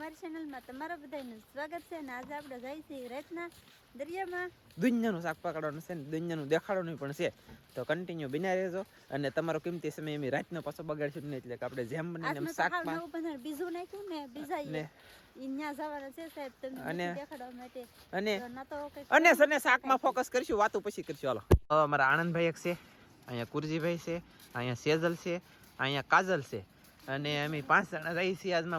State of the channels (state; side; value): identical; both; correlation 1.00